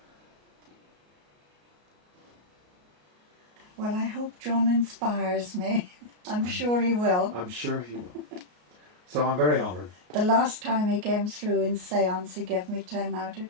Well, I hope John inspires me. I'm sure he will. I'm sure he will. So I'm very honoured. The last time he came through in seance, he gave me 10 out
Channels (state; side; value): late; left; 33 ms